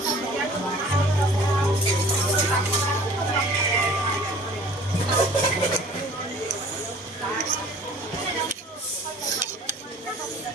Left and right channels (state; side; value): normal; both; correlation 0.49